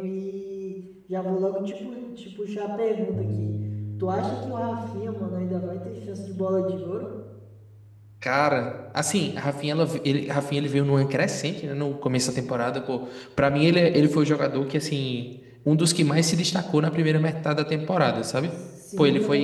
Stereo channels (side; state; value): both; identical; correlation 1.00